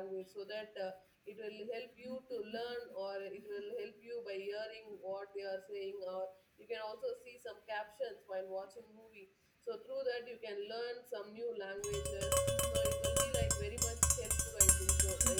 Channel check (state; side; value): identical; both; correlation 1.00